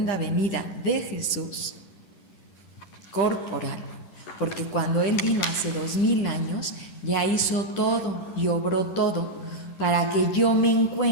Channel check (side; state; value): right; late; 10 ms